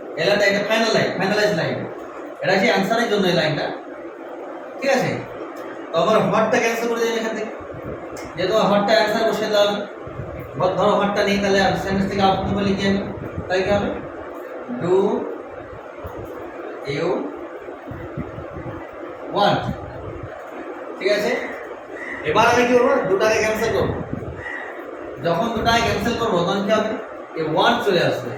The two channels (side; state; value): both; identical; correlation 1.00